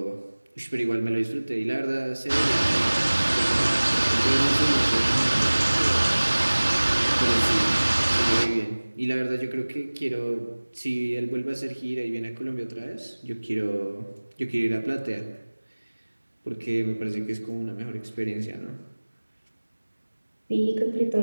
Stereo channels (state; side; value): inverted; both; correlation -1.00